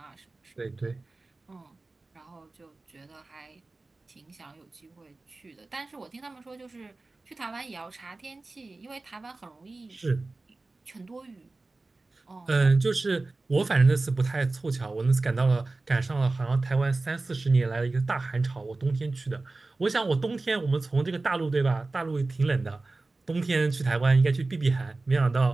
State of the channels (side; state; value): left; quieter; 3.3 dB